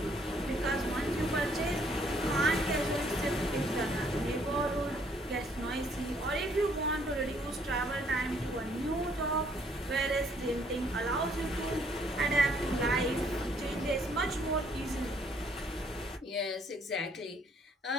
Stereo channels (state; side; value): normal; both; correlation 0.65